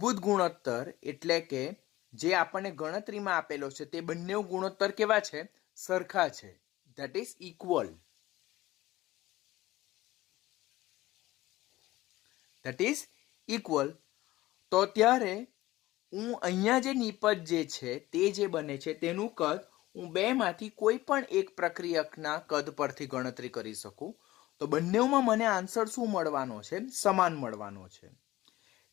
ગુણોત્તર એટલે કે જે આપણને ગણતરીમાં આપેલો છે તે બંને ગુણોત્તર કેવા છે? સરખા છે. That is equal. તો ત્યારે હું અહીંયા જે નિપજ જે છે તે જે બને છે તેનું કદ હું બેમાંથી કોઈ પણ એક પ્રક્રિયકના કદ પરથી ગણતરી કરી શકું. તો બંનેમાં મને આન્સર શું મળવાનો છે? સમાન મળવાનો છે.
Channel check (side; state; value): right; quieter; 17.1 dB